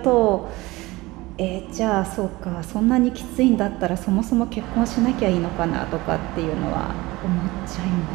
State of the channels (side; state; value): left; quieter; 20.6 dB